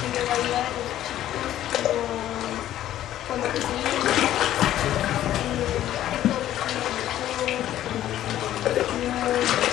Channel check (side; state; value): right; quieter; 12.6 dB